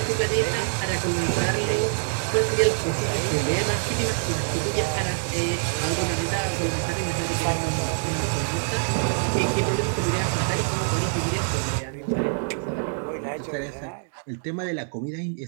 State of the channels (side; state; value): left; silent; digital silence